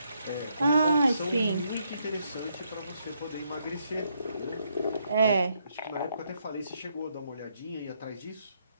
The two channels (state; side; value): inverted; both; correlation -0.76